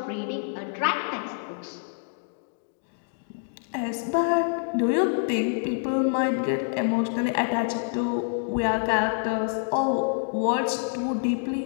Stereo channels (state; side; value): silent; right; digital silence